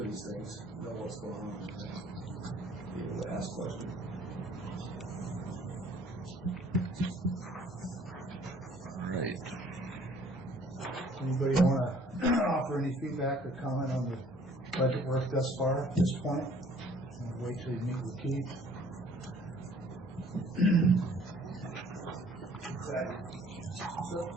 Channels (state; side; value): normal; both; correlation 0.57